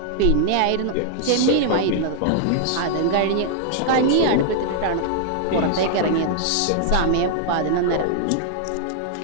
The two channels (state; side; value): different; both; correlation -0.01